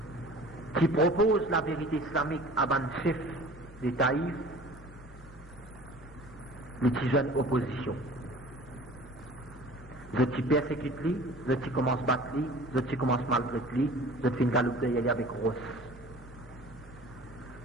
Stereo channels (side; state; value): both; normal; correlation 0.44